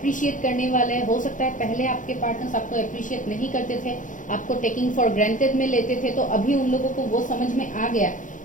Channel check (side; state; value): right; late; 0.37 ms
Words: करने वाले हैं। हो सकता है पहले आपके पार्टनर्स आपको अप्रिशिएट नहीं करते थे, आपको टेकिंग फॉर ग्रांटेड में लेते थे, तो अभी उन लोगों को वो समझ में आ गया,